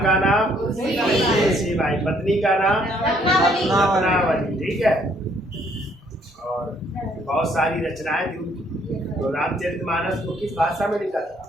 का नाम तुलसीबाई। पत्नी का नाम रत्नावली। ठीक है, और बहुत सारी रचनाएं थी। तो रामचरितमानस को किस भाषा में लिखा था?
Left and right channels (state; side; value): normal; both; correlation 0.66